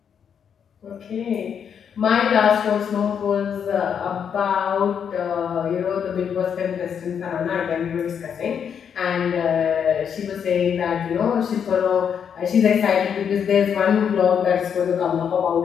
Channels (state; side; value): quieter; right; 7.7 dB